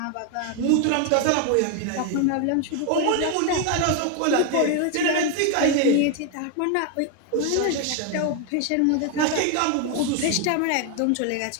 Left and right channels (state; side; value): different; both; correlation 0.01